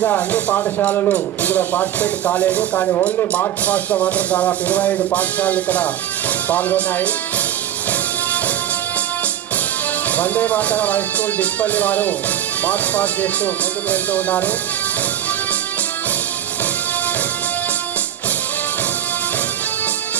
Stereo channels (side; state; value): left; quieter; 11.1 dB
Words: అన్ని పాఠశాలలు ఇందులో పార్టిసిపేట్ కాలేదు. కానీ ఓన్లీ మార్చ్ పాస్ట్లో మాత్రం దాదాపు 25 పాఠశాలలు ఇక్కడ పాల్గొన్నాయి. వందే మాతరం హై స్కూల్ డిస్పల్లి వారు మార్చ్ పాస్ చేస్తూ ముందుకు వెళ్తూ ఉన్నారు.